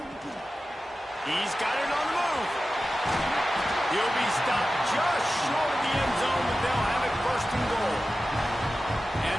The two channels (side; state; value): both; normal; correlation 0.94